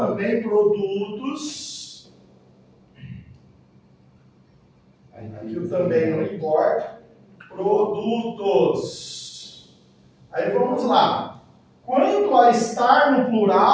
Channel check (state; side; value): identical; both; correlation 1.00